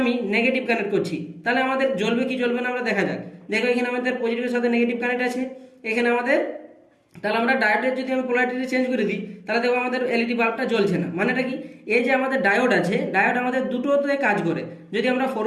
আমি নেগেটিভ কানেক্ট করছি, তাহলে আমাদের জ্বলবে কি জ্বলবে না আমরা দেখা যাক। দেখো এখানে আমাদের পজিটিভের সাথে নেগেটিভ কানেক্ট আছে এখানে আমাদের, তাহলে আমরা ডায়োডের যদি আমি পোলারিটি চেঞ্জ করে দিই, তাহলে দেখো আমাদের এলইডি বাল্বটা জ্বলছে না। মানেটা কি, এই যে আমাদের ডায়োড আছে, ডায়োড আমাদের দুটোতে কাজ করে। যদি আমরা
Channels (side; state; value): both; identical; correlation 1.00